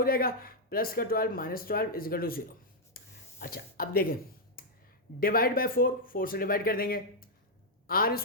जाएगा, प्लस का 12 -12 = 0। अच्छा अब देखें, डिवाइड बाय 4 से डिवाइड कर देंगे, r²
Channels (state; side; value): normal; both; correlation -0.03